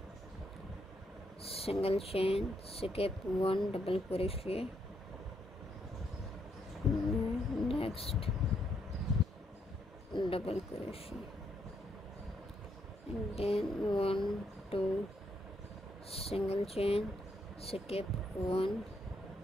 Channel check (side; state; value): both; normal; correlation 0.76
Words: single chain, skip one double crochet, next double crochet, and then 1, 2, single chain, skip one,